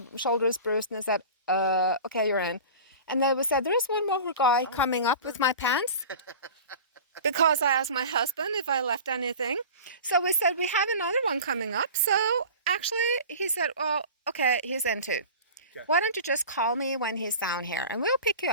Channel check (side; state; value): both; inverted; correlation -0.36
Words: shoulder is bruised, and I said, okay, you're in. And then we said, there is one more guy coming up with my pants. Because I asked my husband if I left anything. So we said, we have another one coming up. So actually, he said, well, okay, he's in too. Okay. Why don't you just call me when he's down here and we'll pick you